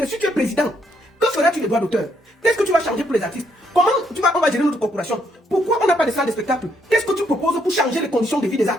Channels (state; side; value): normal; both; correlation 0.73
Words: Si tu es président, que feras-tu des droits d'auteur? Qu'est-ce que tu vas changer pour les artistes? Comment on va gérer notre corporation? Pourquoi on n'a pas de salle de spectacle? Qu'est-ce que tu proposes pour changer les conditions de vie des